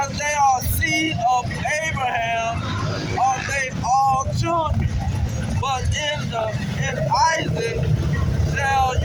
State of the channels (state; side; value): identical; both; correlation 1.00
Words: they are seed of Abraham are they all children, but in Isaac shall